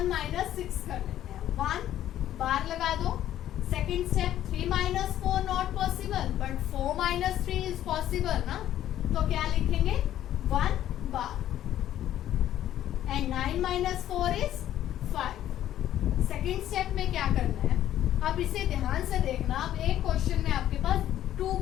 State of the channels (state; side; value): quieter; right; 12.1 dB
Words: माइनस 6 कर लेते हैं, 1 बार लगा दो। Second step 3 minus 4 not possible, but 4 minus 3 is possible ना, तो क्या लिखेंगे 1 बार and 9 minus 4 is 5। Second step में क्या करना है, अब इसे ध्यान से देखना। अब एक क्वेश्चन में आपके पास 2